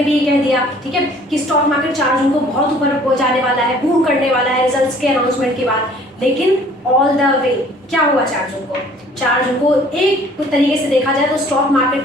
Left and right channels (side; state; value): both; normal; correlation 0.55